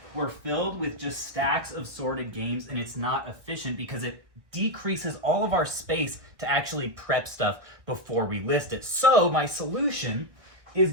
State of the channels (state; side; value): late; left; 1.9 ms